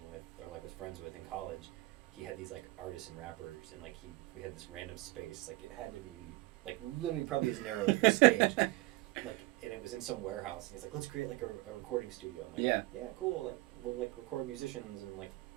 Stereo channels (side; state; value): left; quieter; 20.9 dB